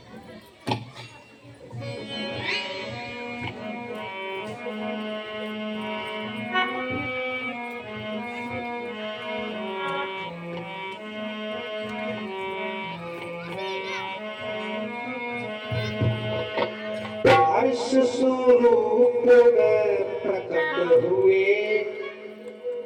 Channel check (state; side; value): identical; both; correlation 1.00